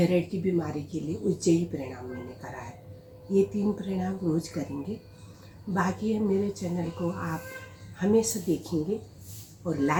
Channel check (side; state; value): both; identical; correlation 1.00